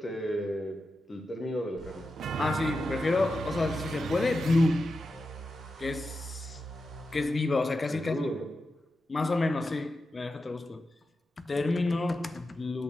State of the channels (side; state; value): both; normal; correlation 0.90